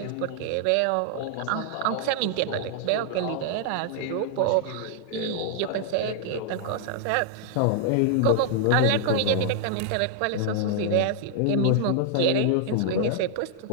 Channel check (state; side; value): different; both; correlation -0.01